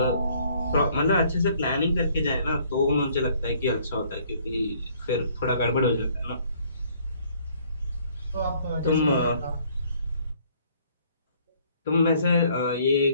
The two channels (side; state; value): both; inverted; correlation -0.61